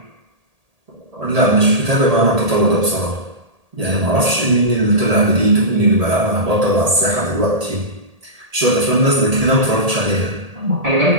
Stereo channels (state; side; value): late; left; 1.8 ms